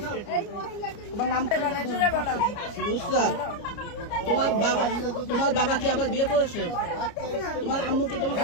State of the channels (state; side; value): late; right; 29 ms